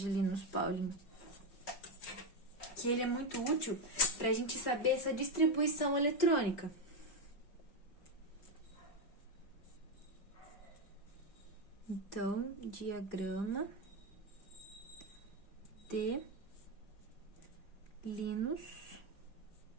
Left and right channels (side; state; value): right; late; 5.4 ms